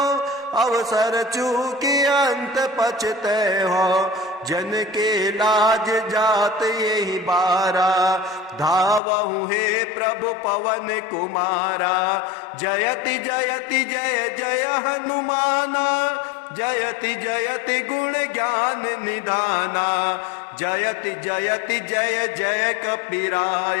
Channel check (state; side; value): drops out; right; at 9.0 s